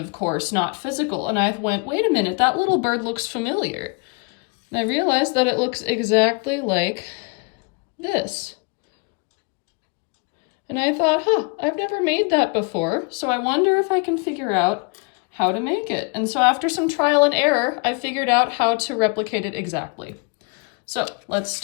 course, not physical. And I went, wait a minute, that little bird looks familiar. And I realized that it looks exactly like this. And I thought, I've never made that before, so I wonder if I can figure out how to make it. And so after some trial and error, I figured out how to replicate it exactly. So let's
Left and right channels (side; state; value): right; quieter; 32.5 dB